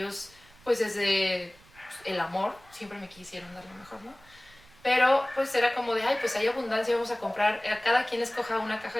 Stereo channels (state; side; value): noise; right; rumble, 26 dB below the sound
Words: pues desde el amor siempre me quisieron dar lo mejor, ¿no? Pero pues era como de, ay, pues hay abundancia, vamos a comprar, cada quien escoja una caja